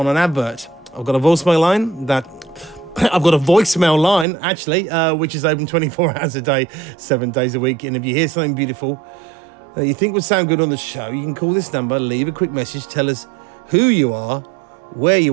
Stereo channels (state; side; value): drops out; left; at 4.2 s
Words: an advert. I've got a voicemail line actually, which is open 24 hours a day, 7 days a week. And if you hear something beautiful that you think would sound good on the show, you can call this number, leave a quick message, tell us who you are, where